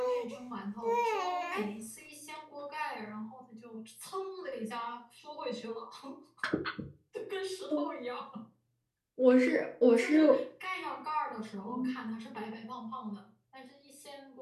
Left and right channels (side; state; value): both; identical; correlation 1.00